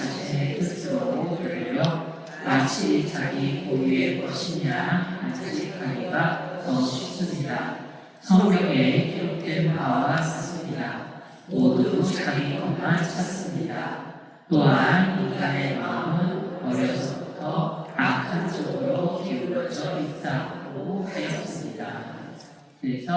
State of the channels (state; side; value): identical; both; correlation 1.00